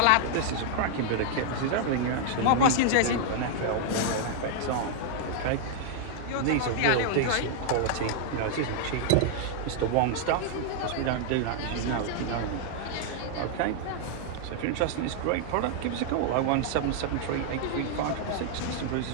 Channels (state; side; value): different; both; correlation -0.01